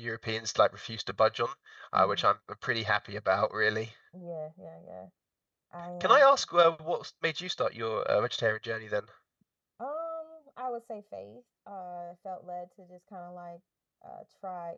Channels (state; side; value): identical; both; correlation 1.00